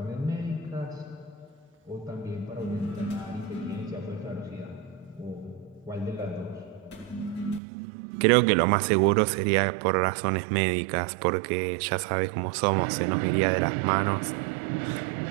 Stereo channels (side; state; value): left; drops out; at 7.6 s